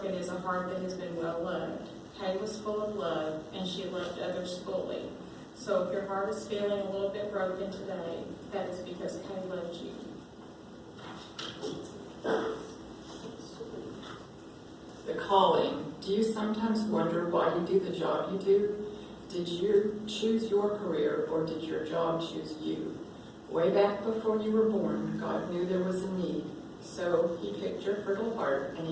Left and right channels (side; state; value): both; identical; correlation 1.00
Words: is a heart that has been well loved. Kay was full of love, and she loved others fully. So if your heart is feeling a little bit broken today, that is because Kay loved you. The calling. Do you sometimes wonder why you do the job you do? Did you choose your career, or did your job choose you? Way back before you were born, God knew there was a need. So he picked your fertile heart and